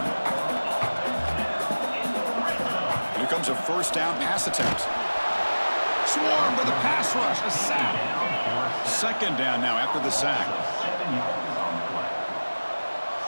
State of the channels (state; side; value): inverted; both; correlation -1.00